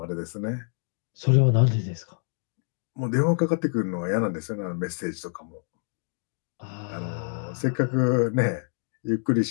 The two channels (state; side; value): silent; right; 60 dB below the other